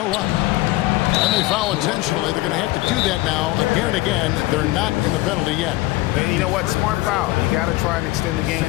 up. And they foul intentionally. They're going to have to do that now again and again. They're not in the penalty yet. And you know what? Smart foul. You got to try and extend the game.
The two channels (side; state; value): right; quieter; 19.1 dB